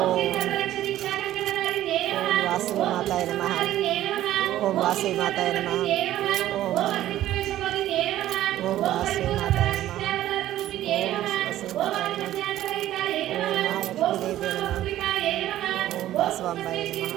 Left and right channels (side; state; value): left; quieter; 13.5 dB